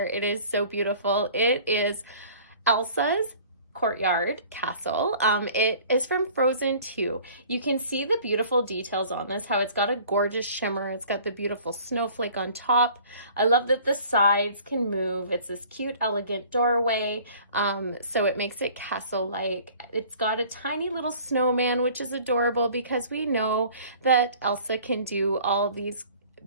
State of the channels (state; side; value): inverted; both; correlation -0.50